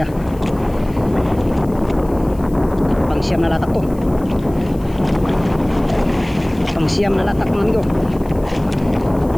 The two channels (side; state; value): left; noise; hiss, 26 dB below the sound